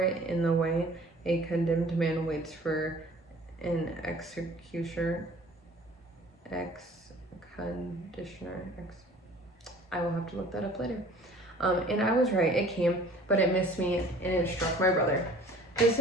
it in the way a condemned man waits for an executioner. conditioner. I will have to look that up later. And I was right, it came, but it missed me and it struck my brother. The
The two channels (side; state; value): both; normal; correlation 0.49